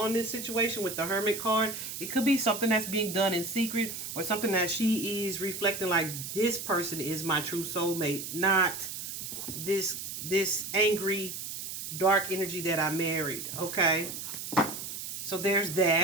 this situation with the Hermit card. It could be something that's being done in secret, or something that she is reflecting like, this person is my true soulmate, not this angry, dark energy that I married. Okay, so there's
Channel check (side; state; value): right; noise; hiss, 7 dB below the sound